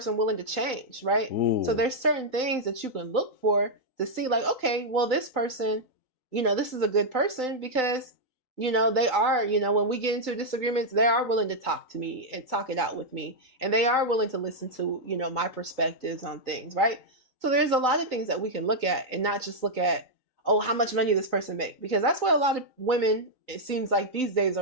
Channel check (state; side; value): late; left; 3.9 ms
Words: willing to change, right? Ooh. So there's certain things that you can look for to see like, okay, well, this person, this is a good person because, they are, when we get into disagreements, they are willing to talk to me and talk it out with me. And they are willing to listen to, my perspectives on things, right? So there's a lot of things that we can look at and not just look at, oh, how much money this person make? Because that's what a lot of women, it seems like these days,